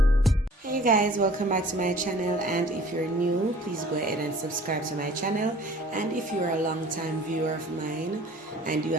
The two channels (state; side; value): normal; both; correlation 0.49